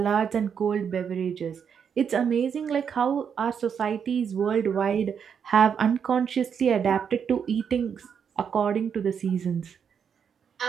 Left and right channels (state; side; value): quieter; left; 7.3 dB